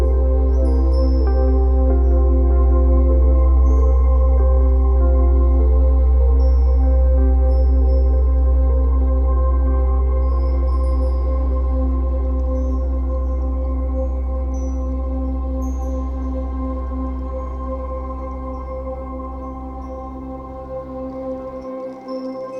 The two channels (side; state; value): both; identical; correlation 1.00